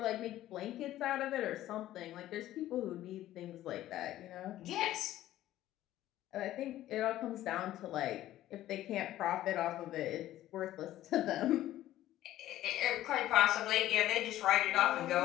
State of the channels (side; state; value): right; quieter; 13.9 dB